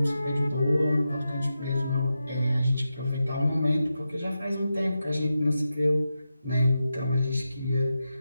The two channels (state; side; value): inverted; both; correlation -0.89